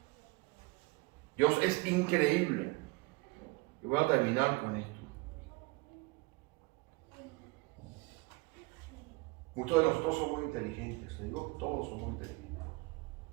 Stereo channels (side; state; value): left; quieter; 25.4 dB